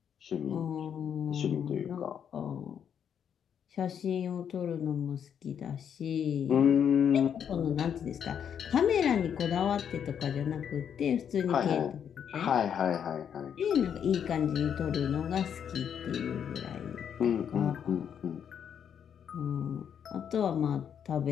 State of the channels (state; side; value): quieter; right; 8.3 dB